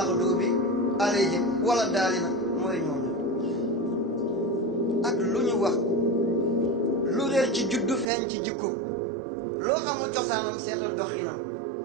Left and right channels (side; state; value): left; drops out; at 8.1 s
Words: alayhim wala daalina mooy ñoom ak lu ñu wax lu réer ci juddu feeñ ci jikko loo xamul cosaanam seetal doxinam